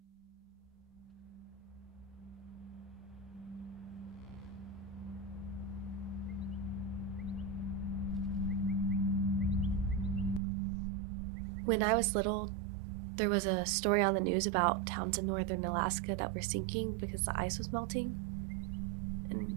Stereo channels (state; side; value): drops out; left; at 10.4 s